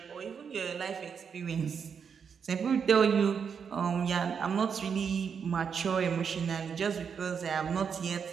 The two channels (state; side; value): quieter; left; 6.7 dB